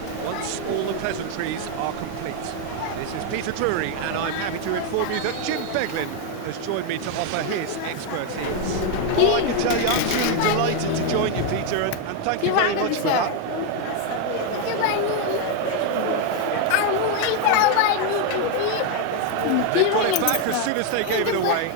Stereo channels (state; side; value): different; both; correlation 0.01